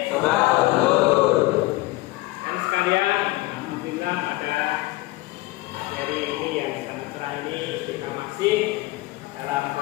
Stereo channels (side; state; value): right; quieter; 19.4 dB